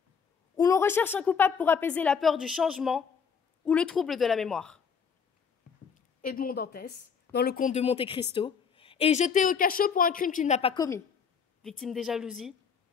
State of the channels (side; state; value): right; quieter; 6.3 dB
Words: où l'on recherche un coupable pour apaiser la peur du changement ou le trouble de la mémoire. Edmond Dantès, dans le Comte de Monte Cristo, est jeté au cachot pour un crime qu'il n'a pas commis, victime des jalousies